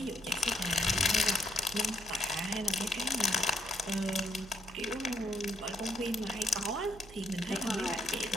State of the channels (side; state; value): right; noise; hum, 18 dB below the sound